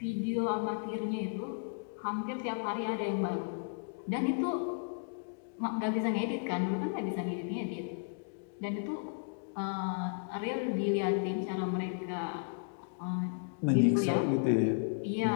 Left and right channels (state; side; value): silent; right; digital silence